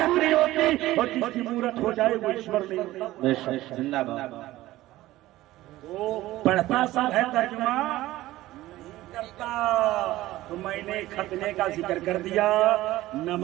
نہیں ہوتی، اور جس کی مورت ہو جائے وہ ایشور نہیں ہوتا۔ بے شک زندہ باد۔ وہ پڑھتا سب ہے ترجمہ کرتا، تو میں نے ختنے کا ذکر کر دیا،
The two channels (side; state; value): left; quieter; 16.4 dB